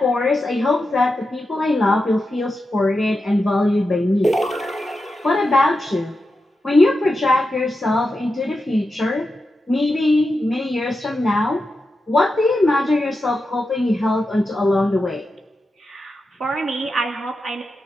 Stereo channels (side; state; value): both; normal; correlation 0.89